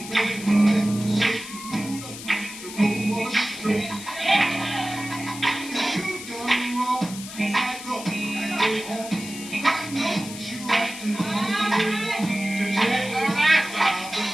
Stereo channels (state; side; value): noise; left; hiss, 12 dB below the sound